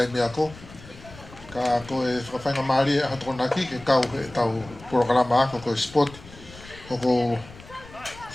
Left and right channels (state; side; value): noise; left; rumble, 19 dB below the sound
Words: ako. Ka koe whakawhainga maari e ahatona ki ke kau e tau porokalama ako koe spot. O ko